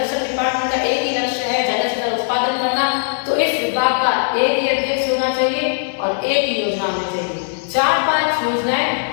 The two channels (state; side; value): silent; right; 67 dB below the other